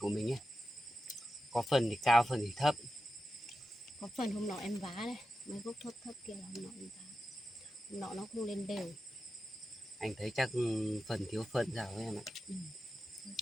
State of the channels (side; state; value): both; normal; correlation 0.91